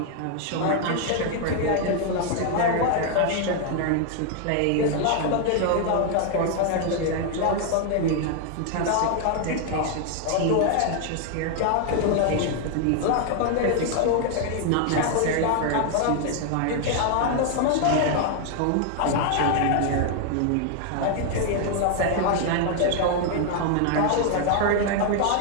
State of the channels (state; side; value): different; both; correlation 0.00